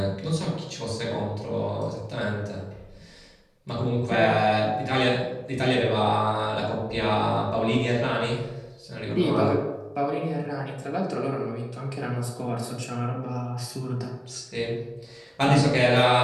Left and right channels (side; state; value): both; identical; correlation 1.00